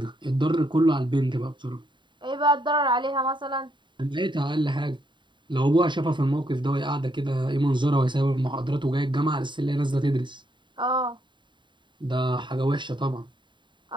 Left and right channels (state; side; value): late; left; 0.23 ms